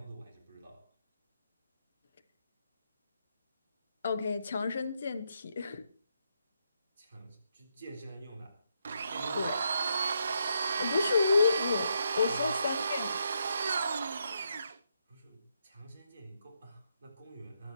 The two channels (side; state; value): both; inverted; correlation -0.79